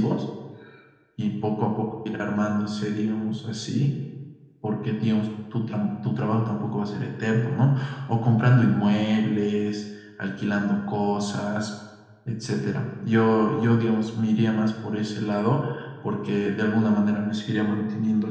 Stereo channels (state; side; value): identical; both; correlation 1.00